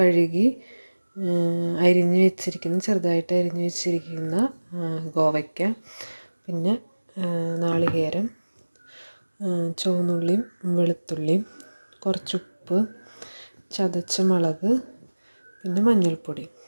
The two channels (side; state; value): both; inverted; correlation -1.00